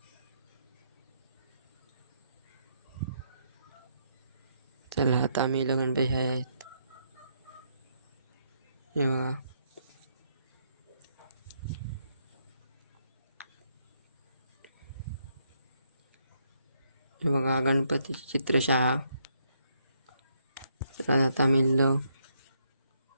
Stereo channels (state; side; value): inverted; both; correlation -0.75